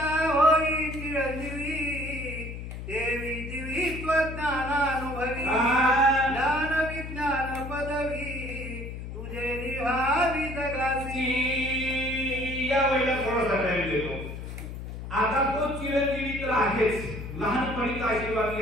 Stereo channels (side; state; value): left; noise; hum, 8 dB below the sound